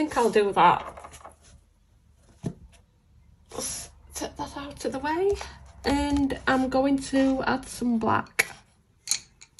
I'll do that. Let's take that out of the way, and I'm going to add some black.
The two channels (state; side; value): identical; both; correlation 1.00